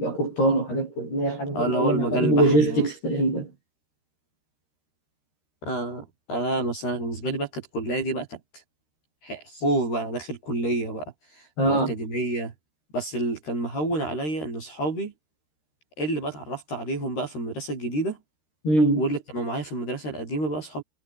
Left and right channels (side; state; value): right; late; 13 ms